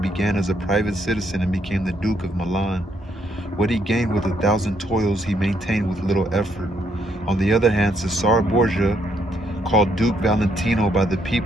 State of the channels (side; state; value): both; normal; correlation 0.72